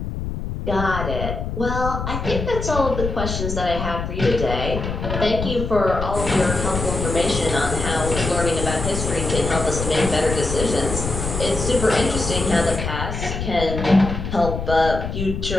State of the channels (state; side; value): noise; left; rumble, 5 dB below the sound